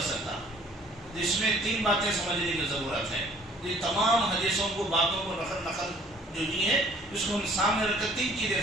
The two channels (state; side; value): normal; both; correlation 0.56